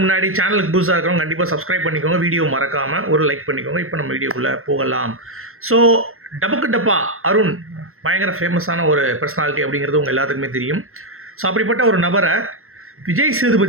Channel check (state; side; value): late; left; 0.62 ms